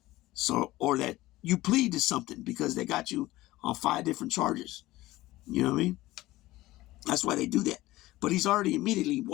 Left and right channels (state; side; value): quieter; right; 17.6 dB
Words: So, or that you plead to something because they got you on 5 different charges. You know what I mean? That's why they do that. But he's already immediately